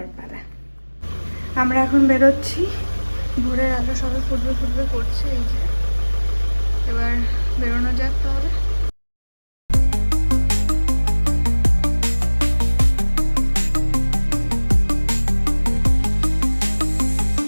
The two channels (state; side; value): inverted; both; correlation -1.00